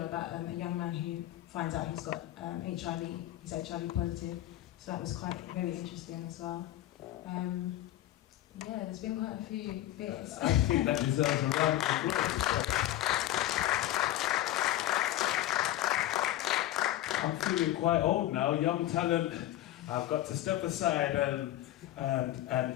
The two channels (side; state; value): right; quieter; 14.2 dB